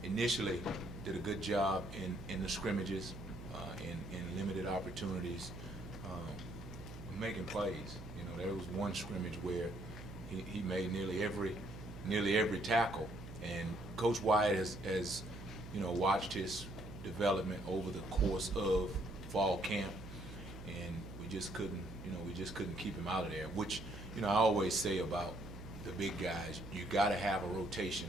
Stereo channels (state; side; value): noise; right; hum, 12 dB below the sound